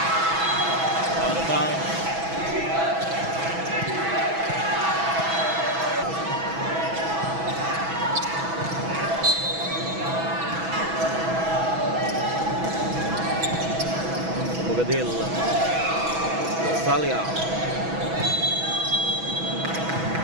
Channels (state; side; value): late; left; 6.1 ms